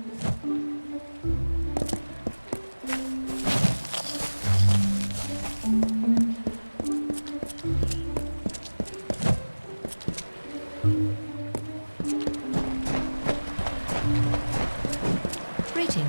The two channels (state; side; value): inverted; both; correlation -1.00